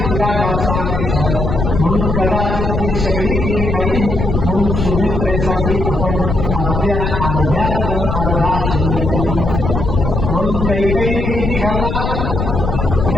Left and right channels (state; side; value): noise; left; rumble, 2 dB below the sound